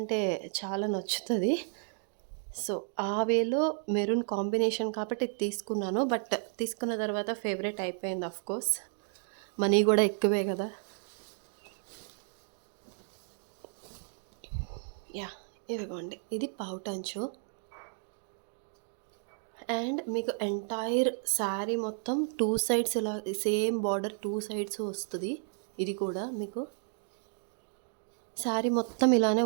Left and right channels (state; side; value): silent; left; 55 dB below the other